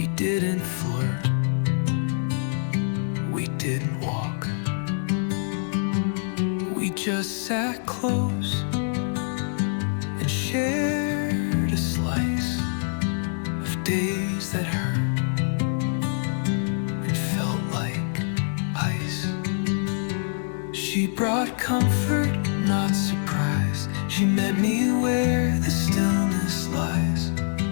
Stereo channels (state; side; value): silent; right; digital silence